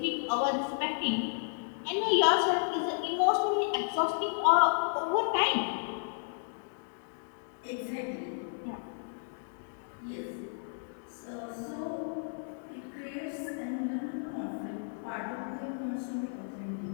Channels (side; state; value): right; silent; digital silence